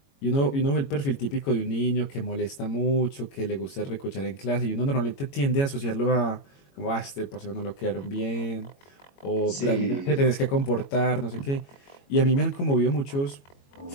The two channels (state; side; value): late; right; 22 ms